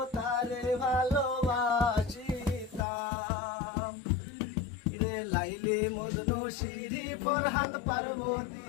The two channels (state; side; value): drops out; right; at 2.9 s